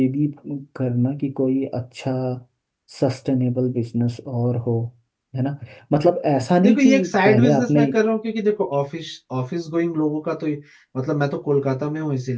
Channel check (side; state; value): both; identical; correlation 1.00